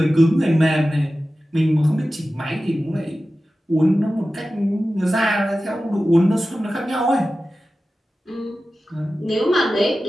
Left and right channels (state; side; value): normal; both; correlation 0.95